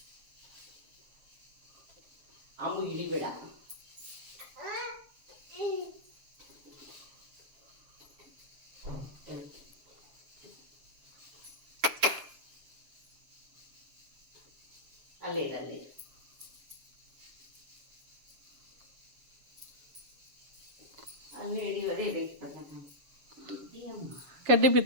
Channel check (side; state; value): left; late; 7.2 ms